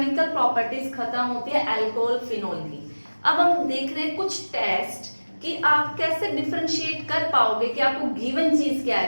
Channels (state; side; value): inverted; both; correlation -1.00